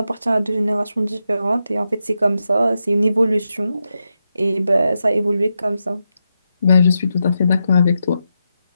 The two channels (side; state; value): both; inverted; correlation -0.87